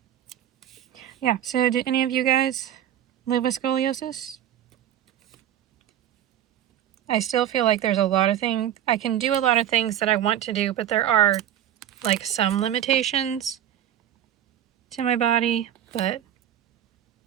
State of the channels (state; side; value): quieter; left; 11.0 dB